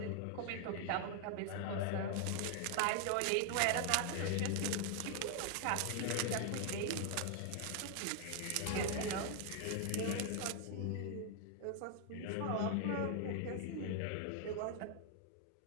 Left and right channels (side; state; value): both; different; correlation 0.00